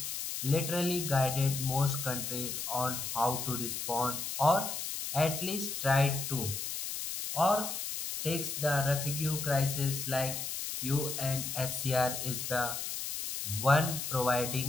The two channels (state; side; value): noise; left; hiss, 4 dB below the sound